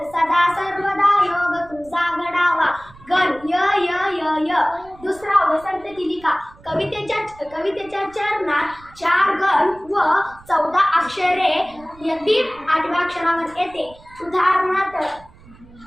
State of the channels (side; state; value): right; noise; rumble, 23 dB below the sound